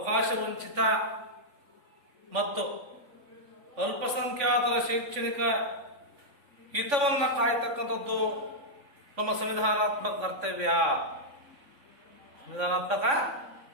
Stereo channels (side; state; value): left; late; 3.5 ms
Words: ವಂಚಿತ ಮತ್ತು ಅಲ್ಪಸಂಖ್ಯಾತರ ಶೈಕ್ಷಣಿಕ ಹಿತವನ್ನ ಕಾಯ್ತಕ್ಕಂಥದ್ದು ನಮ್ಮ ಸಂವಿಧಾನಾತ್ಮಕ ಕರ್ತವ್ಯ. ಸಂವಿಧಾನಾತ್ಮಕ